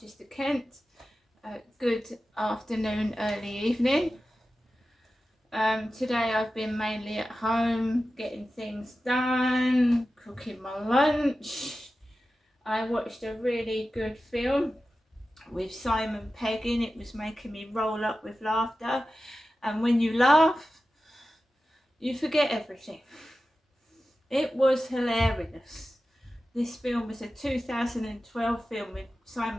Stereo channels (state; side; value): normal; both; correlation 0.94